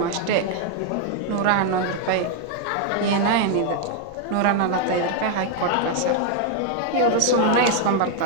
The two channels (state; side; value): different; both; correlation 0.00